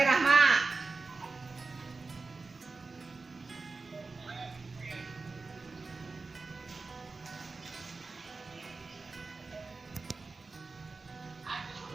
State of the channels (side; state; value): left; quieter; 3.9 dB